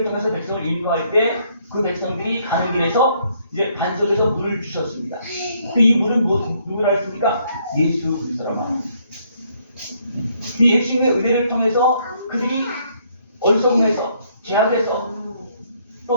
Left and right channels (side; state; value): both; inverted; correlation -0.69